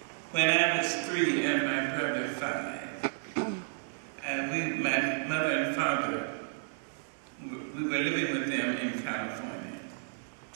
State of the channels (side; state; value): left; silent; digital silence